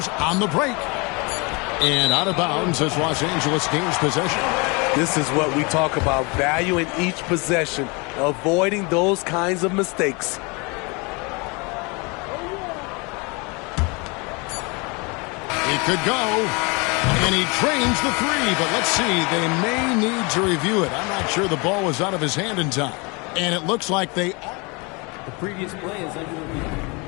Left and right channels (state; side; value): quieter; right; 29.2 dB